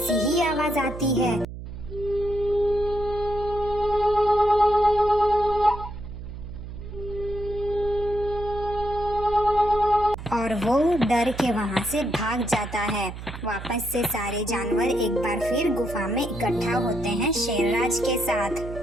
ही आवाज आती है। और वो डर के वहाँ से भाग जाता है। वापस से सारे जानवर एक बार फिर गुफा में इकट्ठा होते हैं शेरराज के साथ।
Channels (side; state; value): right; noise; hum, 11 dB below the sound